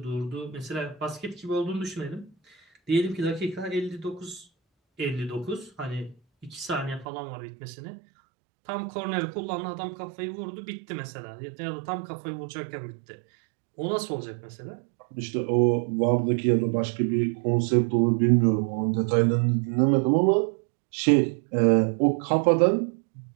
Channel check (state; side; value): drops out; left; at 7.1 s